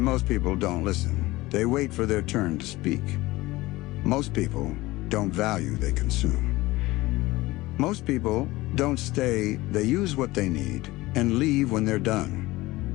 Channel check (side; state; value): right; quieter; 19.4 dB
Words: people don't listen. They wait for their turn to speak. Most people don't value, they consume. Most people don't stay, they use what they need and leave when they're